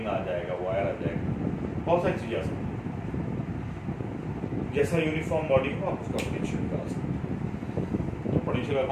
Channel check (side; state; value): both; identical; correlation 1.00